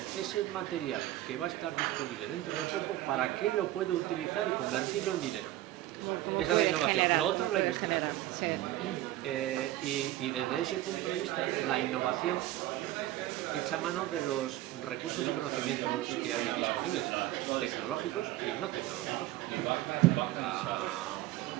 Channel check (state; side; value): quieter; left; 15.3 dB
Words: ese material que va a estar disponible dentro de poco, ¿para qué lo puedo utilizar y convertirlo en dinero? Esa es la innovación. Lo otro es la investigación. Y desde ese punto de vista, la innovación echa mano de los recursos y conocimientos que hay disponibles, tecnológicos y no tecnológicos.